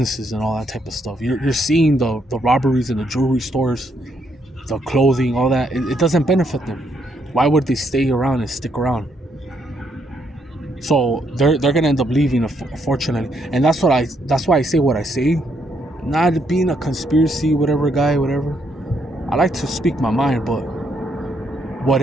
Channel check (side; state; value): both; normal; correlation 0.74